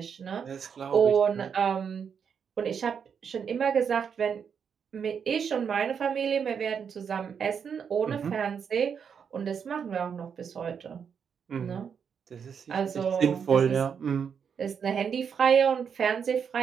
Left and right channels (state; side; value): quieter; left; 7.0 dB